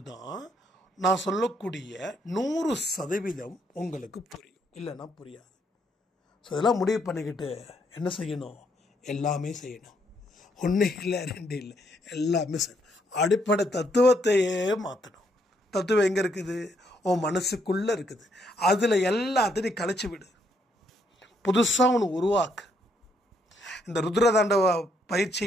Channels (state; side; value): normal; both; correlation 0.73